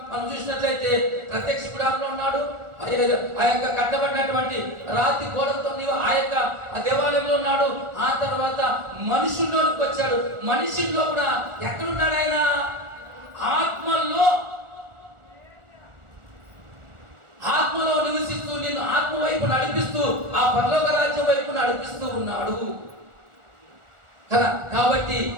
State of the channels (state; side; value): late; left; 1.4 ms